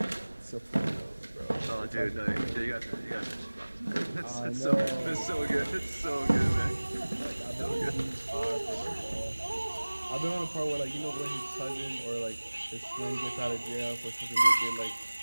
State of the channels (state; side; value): inverted; both; correlation -1.00